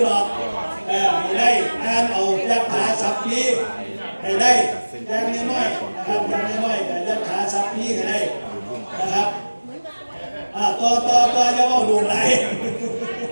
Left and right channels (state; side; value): inverted; both; correlation -1.00